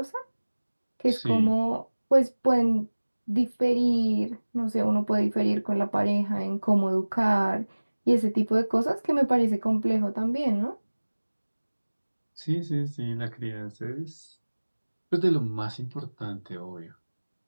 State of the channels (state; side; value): inverted; both; correlation -1.00